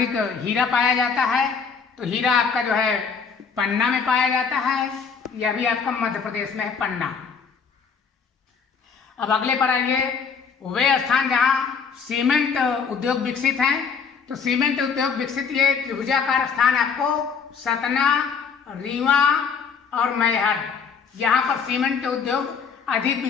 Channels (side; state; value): right; quieter; 6.0 dB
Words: हीरा पाया जाता है, तो हीरा आपका जो है पन्ना में पाया जाता है, यह भी आपका मध्य प्रदेश में है, पन्ना। अब अगले पर आइए, वे स्थान जहाँ सीमेंट उद्योग विकसित हैं। तो सीमेंट उद्योग विकसित ये त्रिभुजाकार स्थान आपको सतना, रीवा और मैहर, यहाँ पर सीमेंट उद्योग अधिक